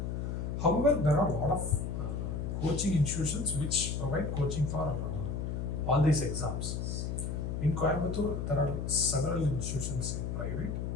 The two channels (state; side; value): noise; left; hum, 3 dB below the sound